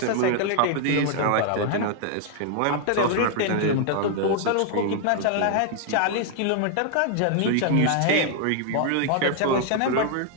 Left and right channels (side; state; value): both; different; correlation 0.00